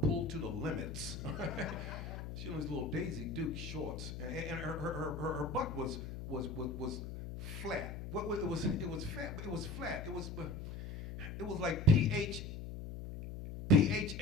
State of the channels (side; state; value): left; noise; hum, 7 dB below the sound